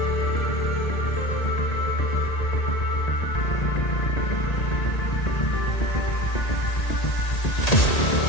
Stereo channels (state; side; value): late; right; 1.8 ms